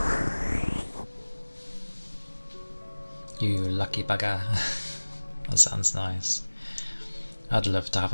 You lucky bugger. That sounds nice. I'd love to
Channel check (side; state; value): both; inverted; correlation -1.00